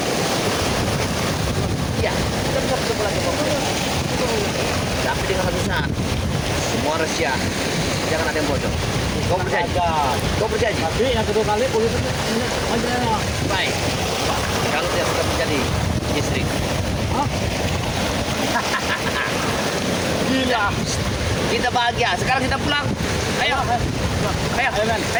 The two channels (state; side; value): identical; both; correlation 1.00